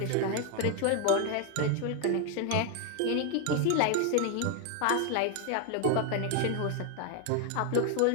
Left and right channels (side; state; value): both; different; correlation 0.01